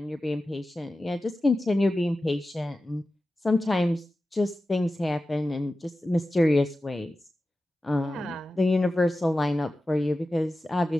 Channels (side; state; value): both; normal; correlation 0.94